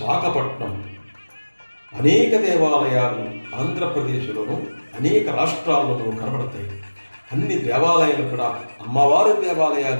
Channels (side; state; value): both; inverted; correlation -1.00